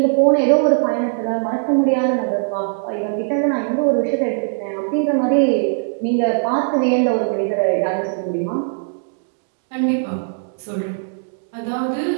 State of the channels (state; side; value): silent; left; digital silence